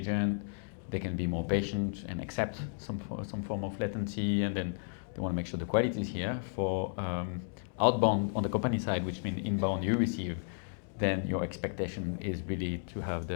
they can be more patient and accept some form of latency, and then they want to make sure the quality is here. For outbound on the company side, which means inbound you receive, then your expectation is really to have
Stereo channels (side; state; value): right; silent; digital silence